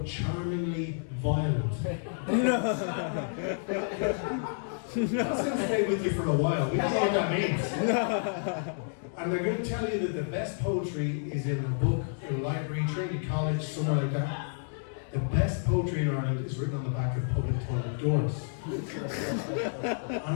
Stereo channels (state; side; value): silent; right; digital silence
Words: charmingly violent. That's going to stay with you for a while. We don't know what that means. And they're going to tell you that the best poetry is in a book, in a library, Trinity College, somewhere like that. The best poetry in Ireland is written on the back of public toilet doors. And